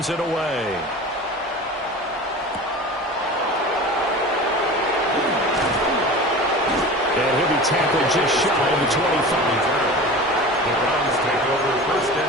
it away. And he'll be tackled just shy of the 25. The Browns take over first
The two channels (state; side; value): normal; both; correlation 0.35